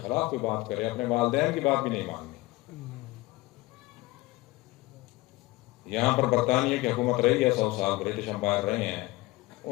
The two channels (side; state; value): right; quieter; 20.3 dB